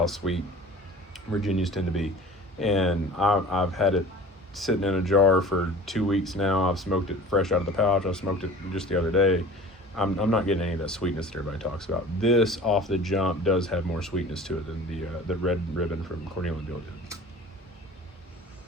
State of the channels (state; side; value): normal; both; correlation 0.42